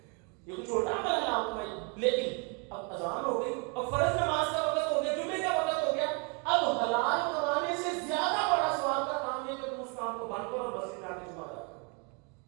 یہ کوئی چھوٹا عمل ہے حلال کمائی، لیکن اب اذان ہو گئی، اب فرض نماز کا وقت ہو گیا، جمعے کا وقت ہو گیا، اب حلال کمانے سے زیادہ بڑا ثواب کا کام ہے کہ تم اس کام کو بند کرو اور مسجد میں آ کے جمعہ ادا کرو.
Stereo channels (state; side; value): quieter; left; 34.8 dB